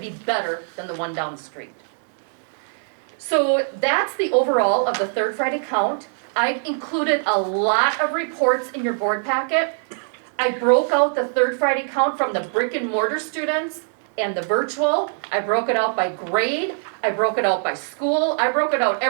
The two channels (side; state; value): left; silent; digital silence